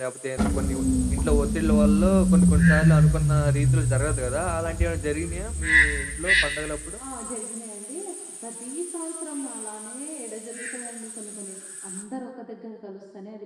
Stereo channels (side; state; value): both; identical; correlation 1.00